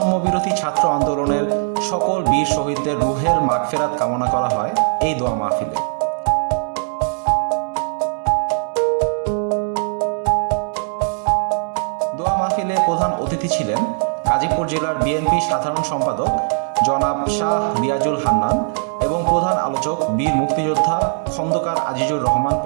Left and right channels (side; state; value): left; silent; 61 dB below the other